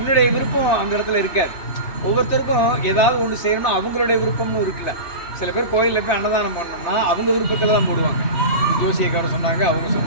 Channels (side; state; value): right; late; 2.9 ms